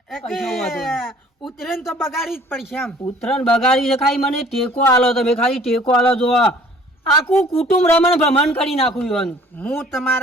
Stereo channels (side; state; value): both; normal; correlation 0.53